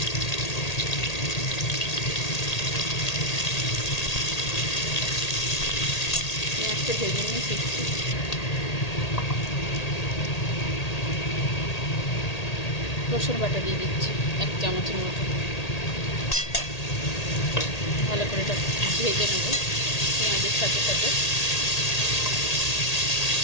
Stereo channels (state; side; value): late; right; 1.8 ms